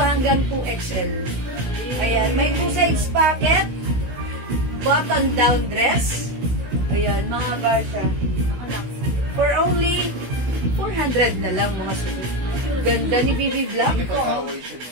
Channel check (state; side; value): late; left; 16 ms